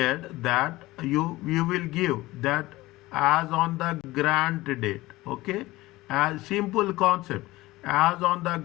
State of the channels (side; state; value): right; quieter; 18.9 dB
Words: that you will give that as on the grant date, okay? As simple concept. As on the